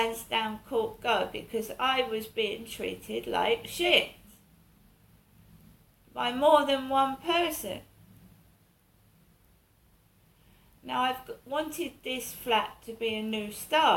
Court go because I was being treated like shit by more than one person. Now I've wanted this flat to be a new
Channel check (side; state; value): both; identical; correlation 1.00